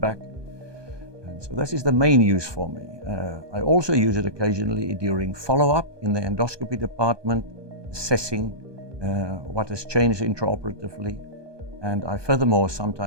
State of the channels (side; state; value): left; late; 1.2 ms